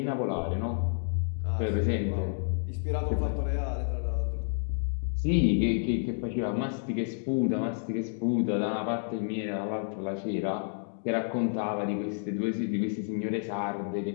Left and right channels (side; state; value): right; silent; digital silence